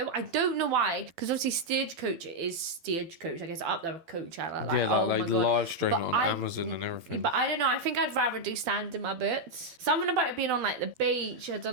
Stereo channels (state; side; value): late; left; 12 ms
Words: I don't know why, because obviously Stagecoach is Stagecoach. I guess up there with Coachella. Like, Yeah, oh like my they God. live stream But it on I- Amazon and everything. But I don't know. I think I'd rather do Stand in My Boots. Something about it being on like the beach. I don't